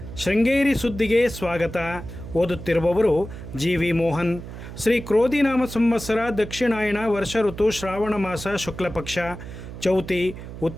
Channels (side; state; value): right; noise; hum, 11 dB below the sound